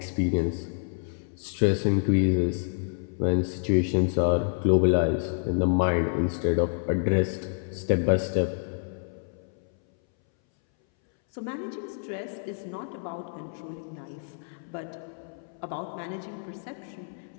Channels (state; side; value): silent; right; 59 dB below the other